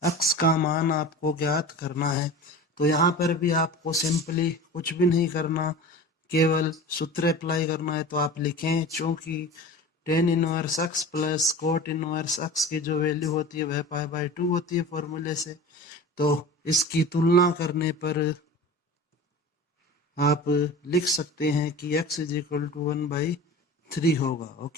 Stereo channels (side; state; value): both; normal; correlation 0.36